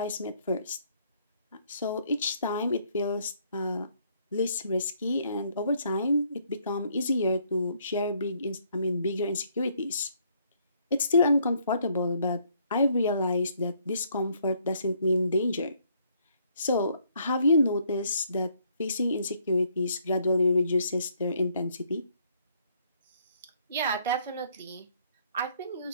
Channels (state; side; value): inverted; both; correlation -0.68